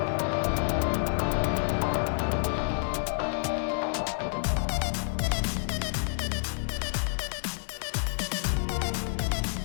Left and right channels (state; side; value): silent; right; digital silence